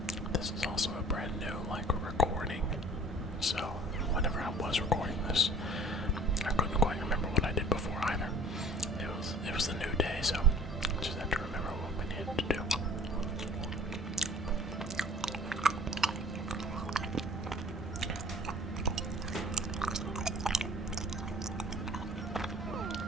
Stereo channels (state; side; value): normal; both; correlation 0.49